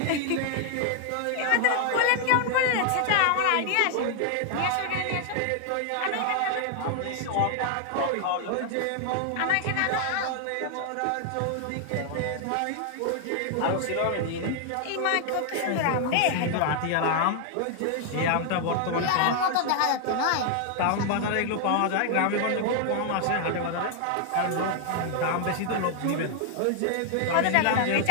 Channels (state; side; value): different; both; correlation 0.00